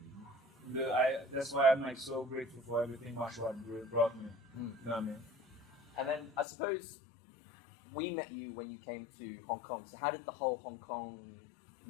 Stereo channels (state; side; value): drops out; right; at 6.5 s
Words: That's why I'm like so grateful for everything martial art brought me. You know what I mean? And then I suppose we met you when you came to Hong Kong. So how did the whole